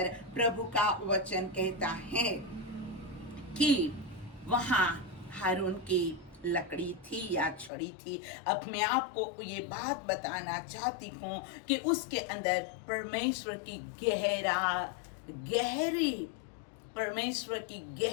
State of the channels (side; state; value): right; drops out; at 7.7 s